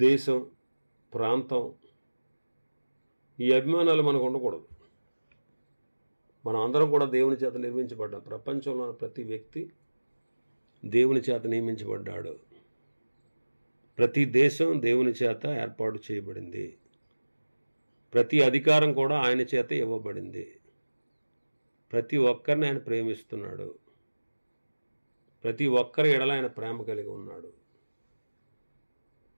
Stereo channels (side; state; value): both; inverted; correlation -1.00